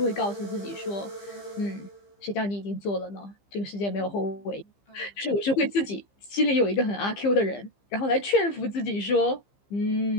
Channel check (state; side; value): late; right; 15 ms